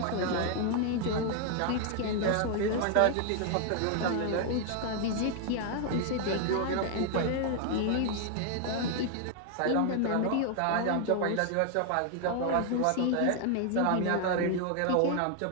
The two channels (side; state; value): both; different; correlation 0.00